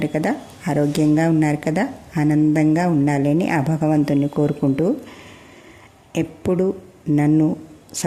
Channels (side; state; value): both; identical; correlation 1.00